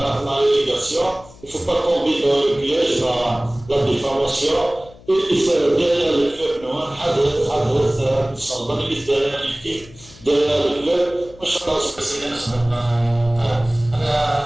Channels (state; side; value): noise; left; hum, 22 dB below the sound